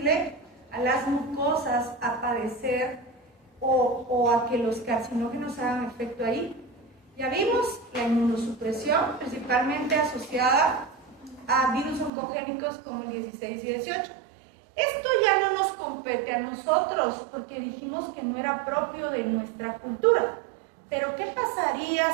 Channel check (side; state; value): left; drops out; at 12.1 s